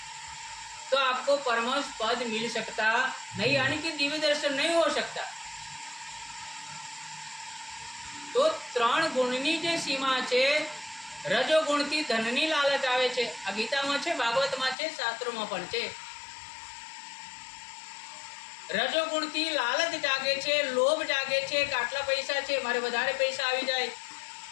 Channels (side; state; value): right; drops out; at 14.8 s